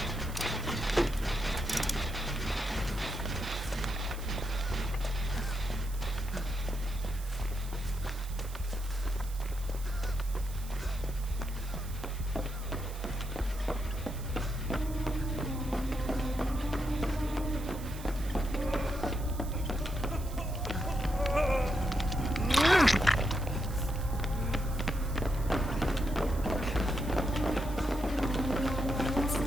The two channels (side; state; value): right; noise; hiss, 16 dB below the sound